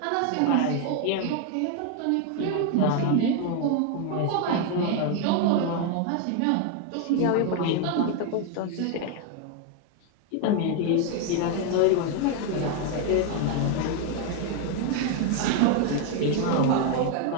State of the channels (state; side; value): different; both; correlation 0.01